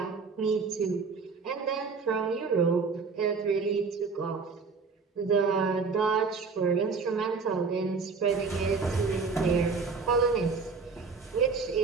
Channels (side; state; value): left; quieter; 4.8 dB